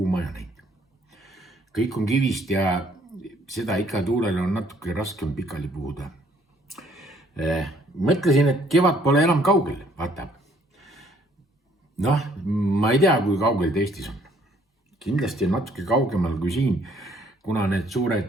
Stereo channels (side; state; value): both; normal; correlation 0.63